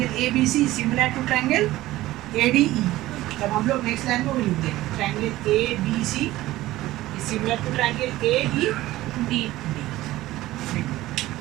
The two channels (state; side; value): quieter; left; 16.6 dB